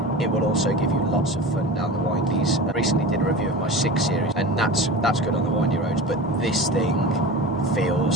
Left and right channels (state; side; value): normal; both; correlation 0.31